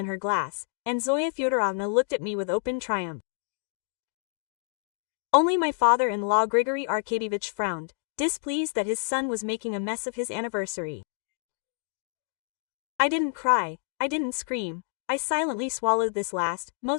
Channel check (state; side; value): silent; right; 59 dB below the other